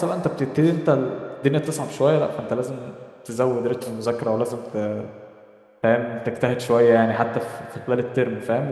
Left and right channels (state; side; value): identical; both; correlation 1.00